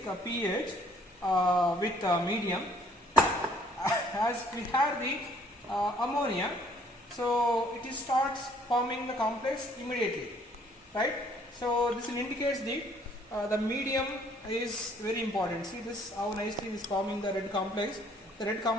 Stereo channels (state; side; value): normal; both; correlation 0.60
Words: pH with medium. As we have the ammonia, so it starts forming the complex immediately, right? So this indicates the medium is very important. See this how nicely is forming the red complex. The red